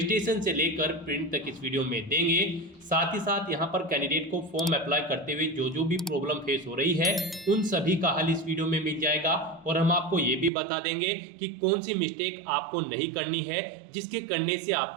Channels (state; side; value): drops out; left; at 10.5 s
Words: से लेकर प्रिंट तक इस वीडियो में देंगे। साथ ही साथ यहाँ पर कैंडिडेट को फॉर्म अप्लाई करते हुए जो भी प्रॉब्लम फेस हो रही है उन सभी का हल इस वीडियो में मिल जाएगा। और हम आपको ये भी बता देंगे कि कौन सी मिस्टेक आपको नहीं करनी है जिसके करने से